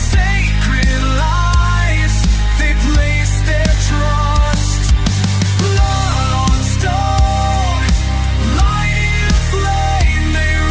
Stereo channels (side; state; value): both; identical; correlation 1.00